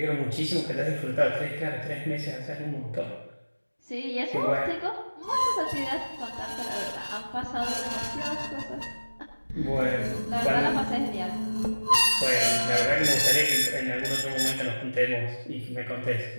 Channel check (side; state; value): both; inverted; correlation -1.00